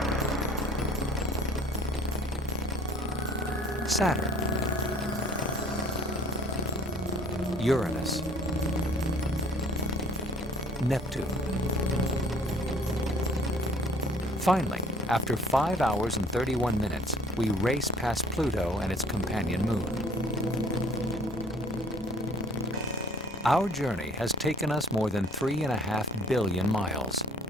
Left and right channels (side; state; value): both; normal; correlation 0.54